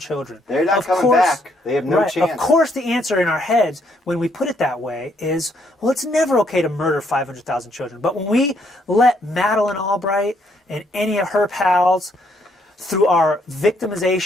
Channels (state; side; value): normal; both; correlation 0.71